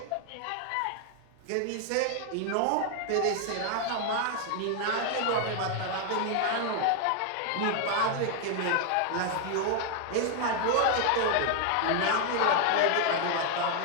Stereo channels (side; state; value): both; different; correlation 0.00